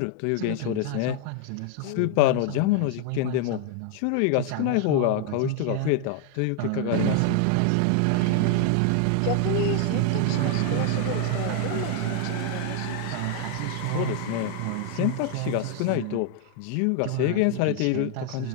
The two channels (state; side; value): different; both; correlation 0.00